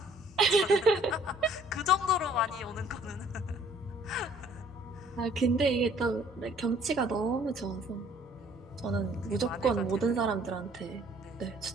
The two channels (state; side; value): normal; both; correlation 0.58